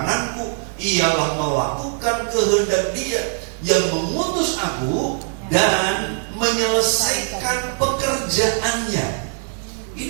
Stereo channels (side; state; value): left; silent; 56 dB below the other